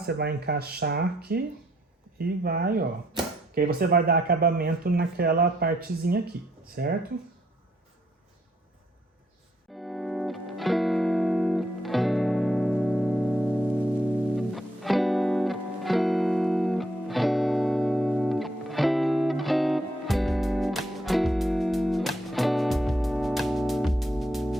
vai encaixar aqui e vai, ó. Que aí você vai dar acabamento naquela partezinha aqui, certo?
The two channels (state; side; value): normal; both; correlation 0.72